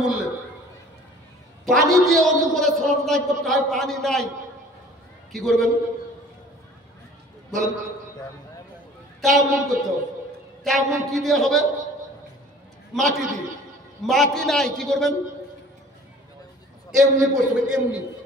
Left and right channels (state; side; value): normal; both; correlation 0.49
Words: মূল্যে। পানি দিয়ে অজু করে সালাত আদায় করতে হয়, পানি নাই, কি করবেন বলেন? তায়াম্মুম করতে হবে। তায়াম্মুম কি দিয়ে হবে? মাটি দিয়ে। মাটি নাই, কি করবেন? এমনি করতে হবে, এমনি।